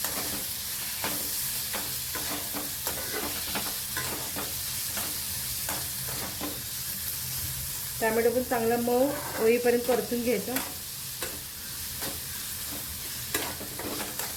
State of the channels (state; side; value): identical; both; correlation 1.00